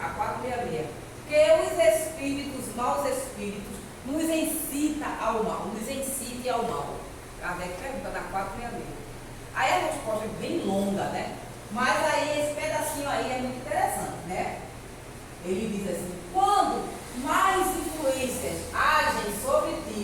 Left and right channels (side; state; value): both; identical; correlation 1.00